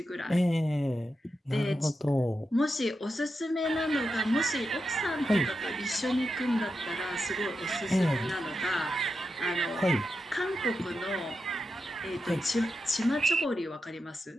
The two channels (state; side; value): normal; both; correlation 0.88